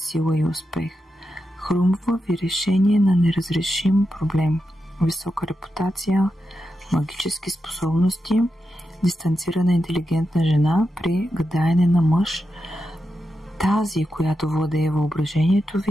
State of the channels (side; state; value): both; normal; correlation 0.88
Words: и успех. Хрумва ви решение на неразрешим проблем. Висока репутация, магически способности, дистанцирана интелигентна жена при гадаене на мъж. Тази, която владее въображението